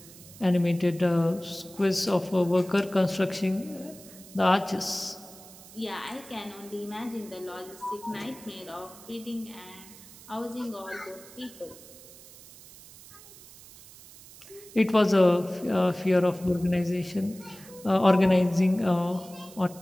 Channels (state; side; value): noise; right; hiss, 19 dB below the sound